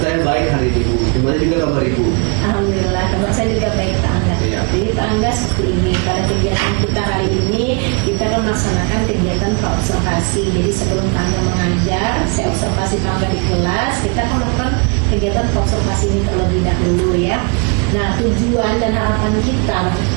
baik hari ini Bu. Gimana juga kabar Ibu? Alhamdulillah kabar saya juga baik Pak Angga. Iya. Jadi Pak Angga seperti ini, pada kegiatan kita hari ini kita akan melaksanakan kegiatan praobservasi. Jadi sebelum Pak Angga mengajar, saya observasi Pak Angga di kelas, kita akan melakukan kegiatan praobservasi ini terlebih dahulu ya. Nah, tujuan dan harapan kita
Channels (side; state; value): left; quieter; 34.5 dB